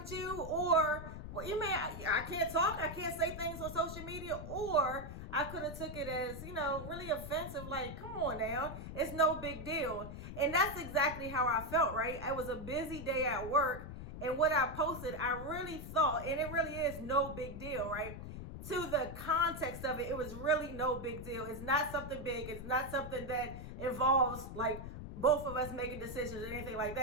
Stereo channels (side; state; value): left; noise; rumble, 9 dB below the sound